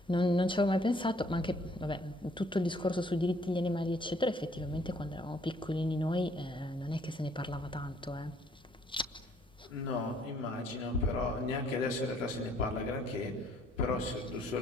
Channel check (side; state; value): both; normal; correlation 0.63